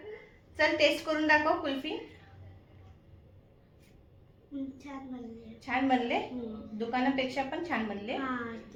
चल टेस्ट करून दाखव कुल्फी. छान बनले. छान बनले. दुकानापेक्षा पण छान बनले.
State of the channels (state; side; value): identical; both; correlation 1.00